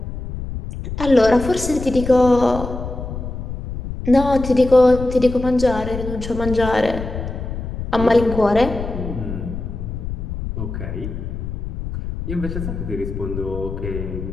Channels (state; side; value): noise; left; rumble, 7 dB below the sound